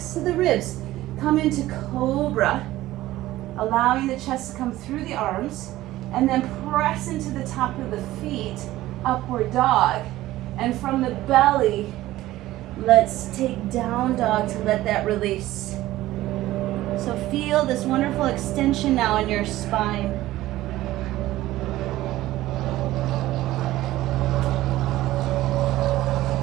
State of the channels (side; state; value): left; quieter; 15.9 dB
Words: to the ribs. Come into cobra, allowing the chest to come through the arms, and then press into the top of the feet, upward dog. And from the belly, let's take down dog to let that release. So feel this wonderful extension now in your spine.